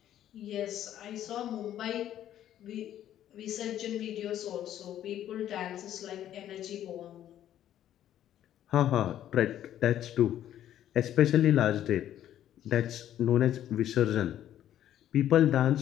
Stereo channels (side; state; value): right; quieter; 11.5 dB